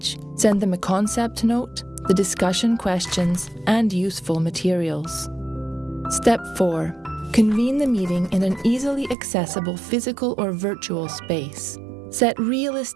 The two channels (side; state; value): left; drops out; at 9.2 s